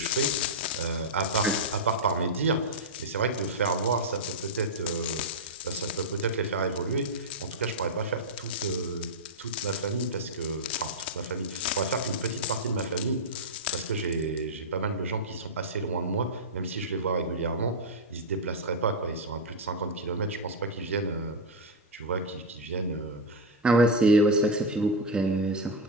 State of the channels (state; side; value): normal; both; correlation -0.01